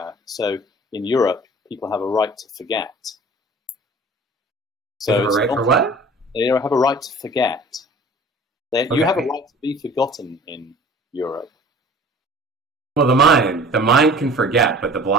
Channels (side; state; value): both; normal; correlation 0.46